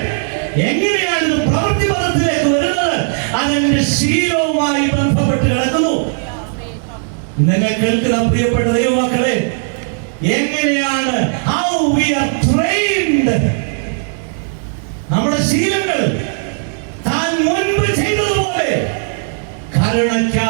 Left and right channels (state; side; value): silent; left; digital silence